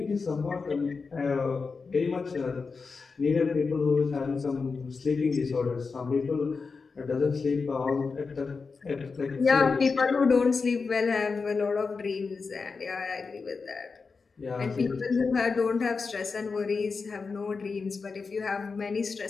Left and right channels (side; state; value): right; quieter; 4.7 dB